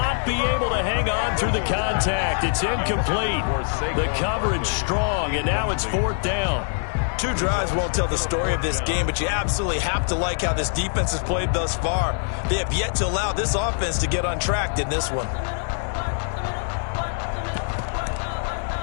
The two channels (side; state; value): right; silent; 63 dB below the other